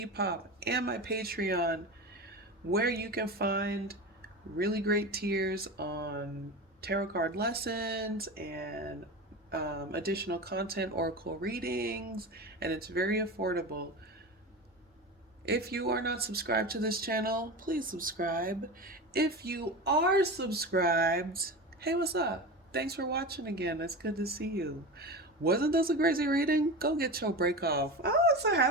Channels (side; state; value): both; normal; correlation 0.26